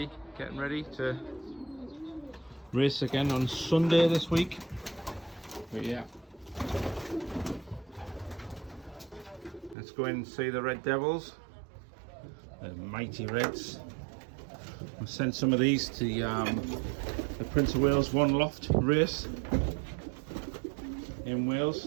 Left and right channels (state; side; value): drops out; left; at 9.8 s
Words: getting ready to race again on Sunday this week. But yeah, let's go in and see the Red Devils, the mighty Reds. I sent some of these to the Prince of Wales One Loft race in